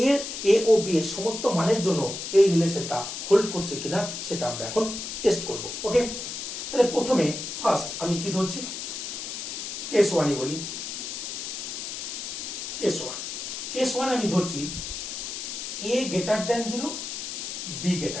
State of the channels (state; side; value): noise; left; hiss, 6 dB below the sound